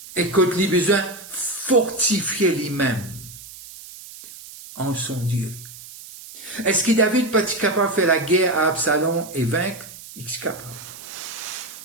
et quand il a besoin de fortifier lui-même en son Dieu. Est-ce que David peut être capable de faire la guerre à Absalom et vaincre? Il est capable.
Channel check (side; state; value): right; noise; hiss, 16 dB below the sound